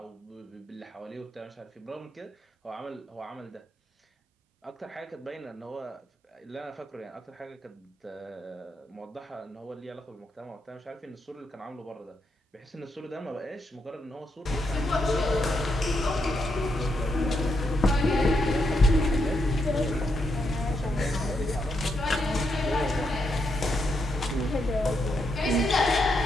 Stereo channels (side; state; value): both; normal; correlation 0.81